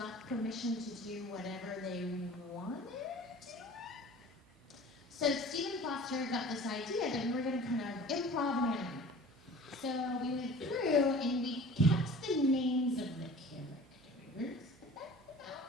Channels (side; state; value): both; normal; correlation 0.43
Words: permission to do whatever they wanted to do it. So Stephen Foster got this idea that we were going to kind of improv anime. So we went through and we kept the names of the characters, but that's